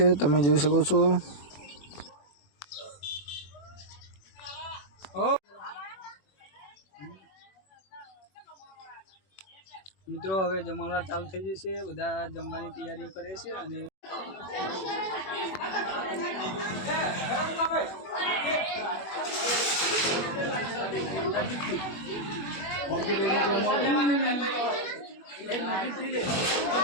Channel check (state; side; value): late; right; 21 ms